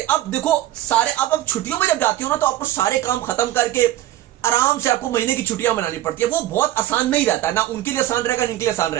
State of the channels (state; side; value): quieter; left; 14.2 dB